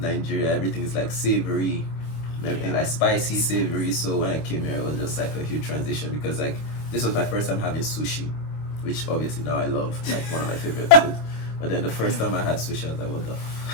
everything is like savory, everything like spicy, savory. So when I came here, it was just like a huge transition, because like this was my first time having sushi, which obviously now I love, like one of my favorite food. But then the first time I had sushi, I was like, what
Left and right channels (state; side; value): late; right; 26 ms